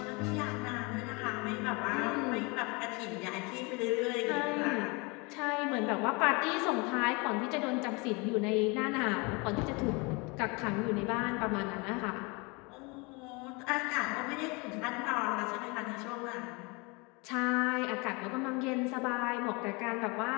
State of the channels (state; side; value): quieter; right; 28.6 dB